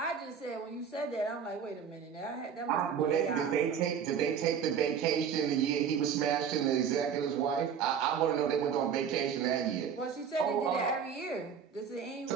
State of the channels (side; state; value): left; quieter; 7.4 dB